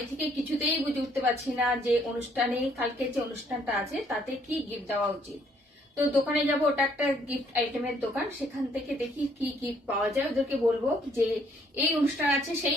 থেকে কিছুতেই বুঝে উঠতে পারছি না, যে অনুষ্ঠানে কালকে যে অনুষ্ঠানটা আছে তাতে কি গিফট দেওয়া উচিত। তো দোকানে যাব, ওটা একটা গিফট আইটেমের দোকান, সেখান থেকে দেখি কি গিফট পাওয়া যায়। ওদেরকে বলবো যে এই অনুষ্ঠান আছে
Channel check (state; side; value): normal; both; correlation 0.66